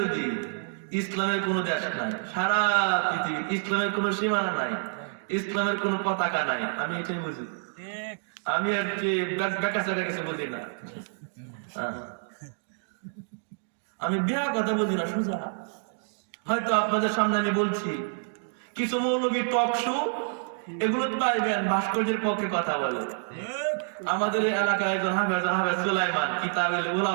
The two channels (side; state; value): left; silent; digital silence